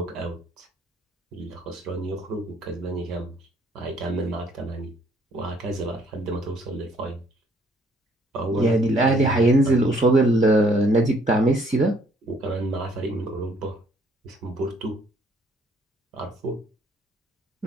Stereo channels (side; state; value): both; normal; correlation 0.64